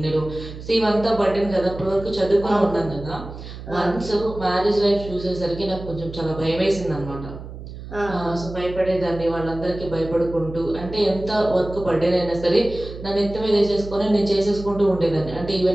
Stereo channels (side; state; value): right; noise; hum, 12 dB below the sound